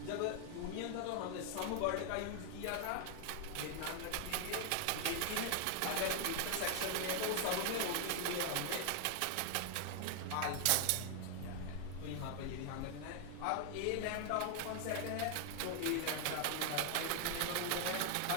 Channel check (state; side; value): different; both; correlation 0.00